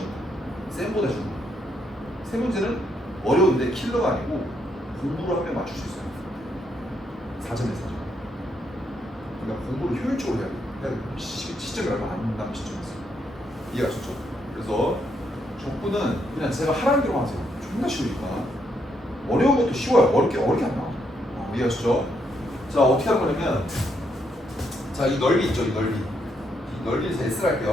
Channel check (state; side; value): normal; both; correlation 0.76